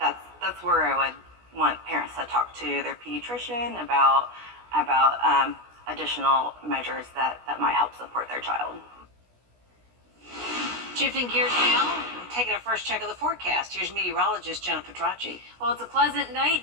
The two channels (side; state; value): left; late; 16 ms